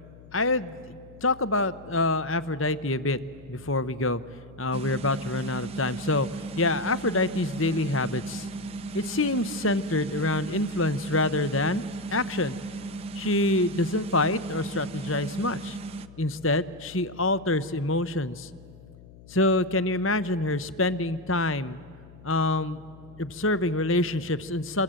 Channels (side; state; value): left; noise; hum, 21 dB below the sound